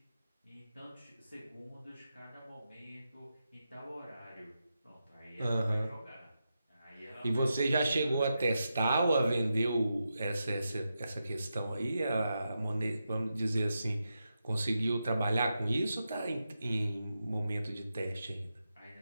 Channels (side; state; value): both; inverted; correlation -0.88